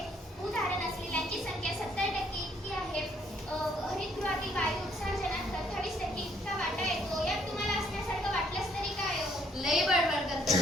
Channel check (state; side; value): normal; both; correlation 0.66